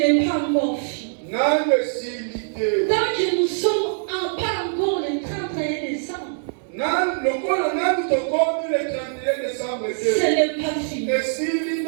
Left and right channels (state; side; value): silent; left; digital silence